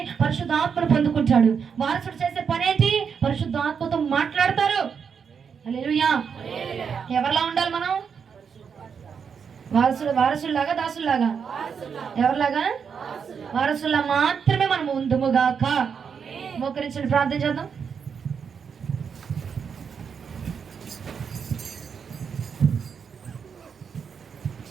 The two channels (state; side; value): quieter; left; 6.6 dB